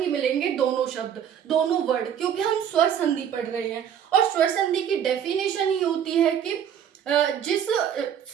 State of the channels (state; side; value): quieter; left; 9.0 dB